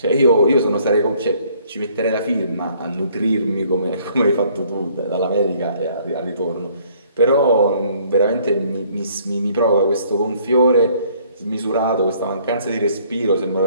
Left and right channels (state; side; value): inverted; both; correlation -0.61